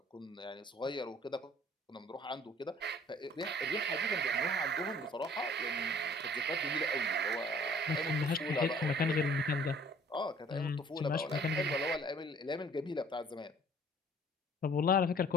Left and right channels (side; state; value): both; normal; correlation 0.54